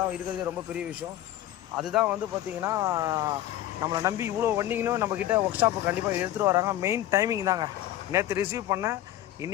இருக்கிறது ரொம்ப பெரிய விஷயம். அதுதான் வந்து பார்த்திங்கன்னா நம்மளை நம்பி இவ்வளோ வண்டிங்களும் நம்மக்கிட்ட ஒர்க் ஷாப்பு கண்டிப்பாக எடுத்துகிட்டு வராங்க. மெயின் டைமிங் தாங்க. நேற்று ரிசீவ் பண்ணேன்,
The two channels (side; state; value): right; quieter; 13.4 dB